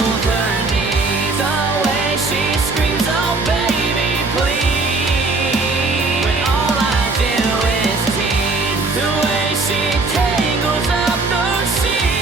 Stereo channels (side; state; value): left; quieter; 3.6 dB